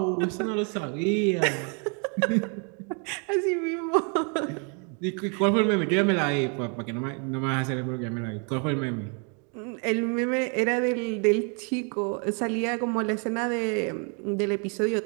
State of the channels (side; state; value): left; quieter; 37.9 dB